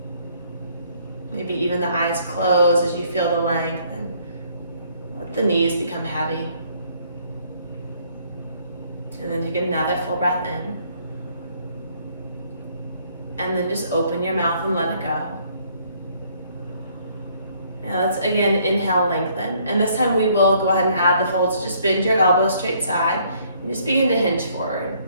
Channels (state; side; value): inverted; both; correlation -0.65